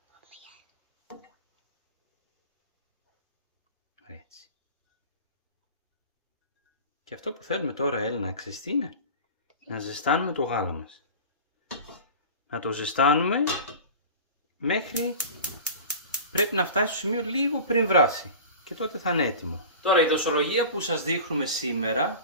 Έτσι. Και αυτό που θέλουμε τώρα, Έλενα, ξέρεις τι είναι? Να ζεστάνουμε το γάλα μας. Να το ζεστάνουμε μέχρι πρέπει να φτάσει στο σημείο λίγο πριν βράσει. Και τότε θα είναι έτοιμο. Τώρα η δοσολογία που σας δείχνουμε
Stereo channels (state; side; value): inverted; both; correlation -0.35